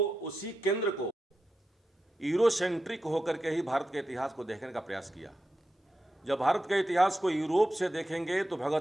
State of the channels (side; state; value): both; normal; correlation 0.89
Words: केंद्र को यूरोसेंट्रिक होकर के ही भारत के इतिहास को देखने का प्रयास किया। जब भारत के इतिहास को यूरोप से देखेंगे तो